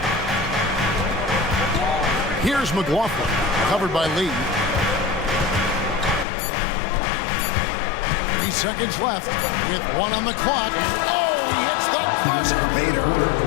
Here's McLaughlin, covered by Lee. 3 seconds left with 1 on the clock. And he hits the buzzer beater.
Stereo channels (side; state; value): right; drops out; at 6.2 s